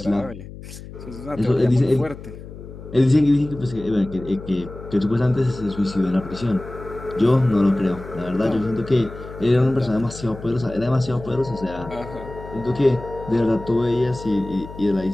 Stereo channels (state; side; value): noise; left; hum, 14 dB below the sound